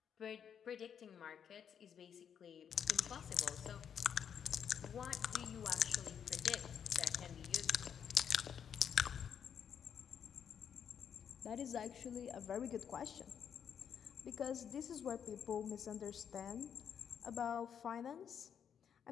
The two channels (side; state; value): right; quieter; 8.1 dB